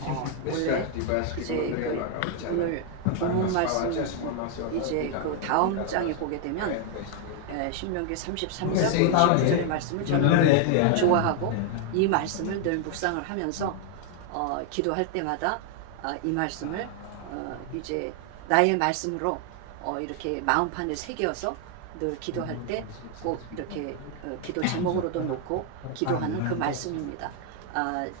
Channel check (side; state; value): both; different; correlation 0.00